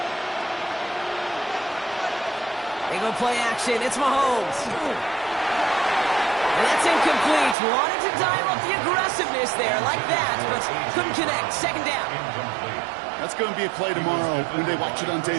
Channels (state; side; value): drops out; left; at 7.6 s